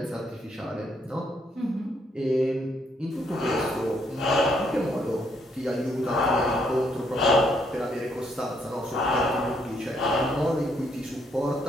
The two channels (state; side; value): normal; both; correlation 0.72